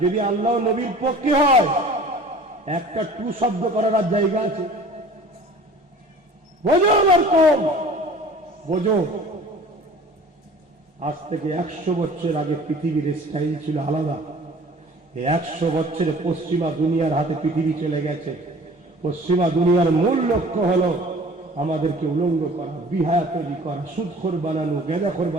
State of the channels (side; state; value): both; normal; correlation 0.46